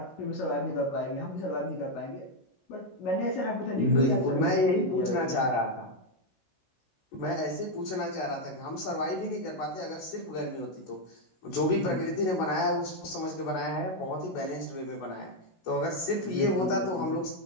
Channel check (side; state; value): right; late; 16 ms